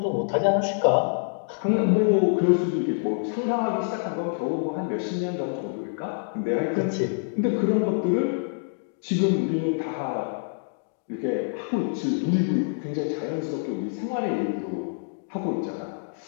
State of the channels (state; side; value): silent; right; digital silence